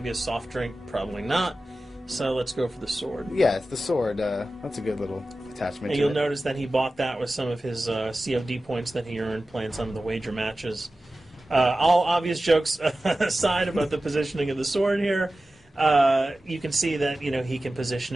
a soft drink, probably not. So let's go for the sword. Yeah, it's the sword. That's a good little attachment. And you'll notice that he bought that with some of his COD points that he earned playing some of the wager matches. All obvious jokes aside about the positioning of the sword here, you can see that he can position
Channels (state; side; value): normal; both; correlation 0.95